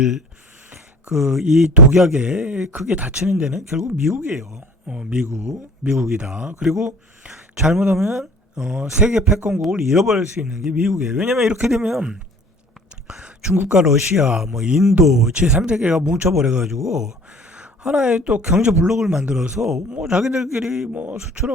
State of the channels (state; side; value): normal; both; correlation 0.48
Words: 이 독약에 크게 다치는 데는 결국 미국이에요. 미국이다. 그리고 잘못하면 세계 패권국을 잃어버릴 수 있는 게 미국이에요. 왜냐면 이렇게 되면 중국과 러시아, 뭐 인도, 제3세계가 뭉쳐버려가지고 하나의 또 경제 블록을 만들어서 뭐 자기들끼리 뭐